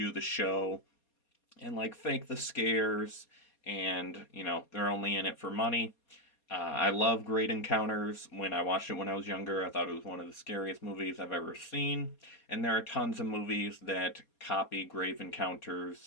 the show and like fake the scares, and they're only in it for money. I love Great Encounters. When I watched it when I was younger, I thought it was one of the scariest movies I've ever seen. And there are tons of movies that copy Grave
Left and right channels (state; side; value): late; right; 4.2 ms